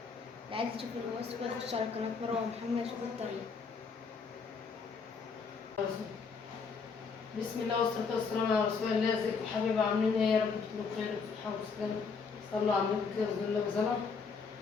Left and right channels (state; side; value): quieter; right; 5.2 dB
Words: عايز يشوف الوصفة يخش على قناة مروة محمد يشوف الطريقة. بسم الله والصلاة والسلام على رسول الله. ازيكم يا حبايبي، عاملين ايه؟ يا رب تكونوا بخير وبصحة وسلامة. صلوا على النبي كده بسم الله وسلام.